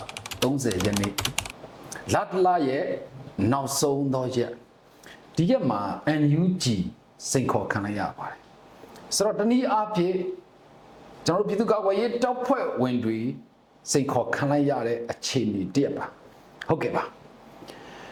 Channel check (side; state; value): both; identical; correlation 1.00